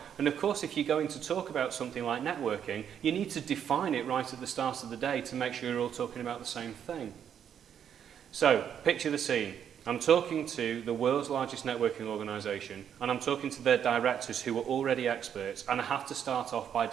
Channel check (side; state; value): left; quieter; 8.7 dB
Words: And of course, if you're going to talk about something like networking, you need to define it right at the start of the day to make sure you're all talking about the same thing. So, picture the scene. I'm talking to the world's largest networking organisation, and I'm talking to their directors who are already experts, and I have to start off by